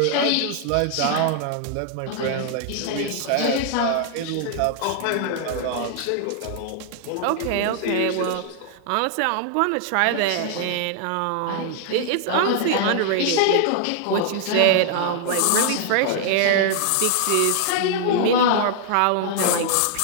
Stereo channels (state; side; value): different; both; correlation -0.01